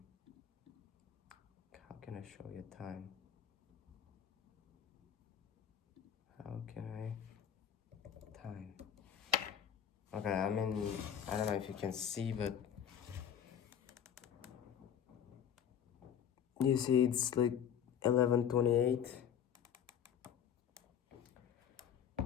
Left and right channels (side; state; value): right; quieter; 8.8 dB